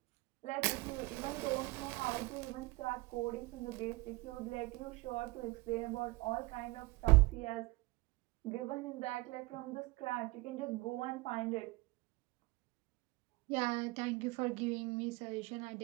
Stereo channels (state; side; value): quieter; left; 22.8 dB